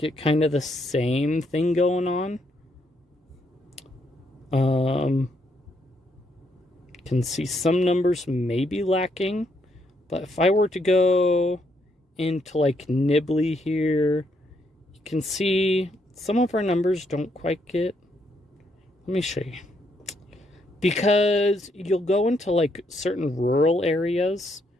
kind of the same thing going on. Can see some numbers may be lacking, but if I were to go into like Nibley here, you can see some of our numbers don't quite get. Let me show you. Because you'll go into like certain rural areas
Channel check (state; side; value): normal; both; correlation 0.75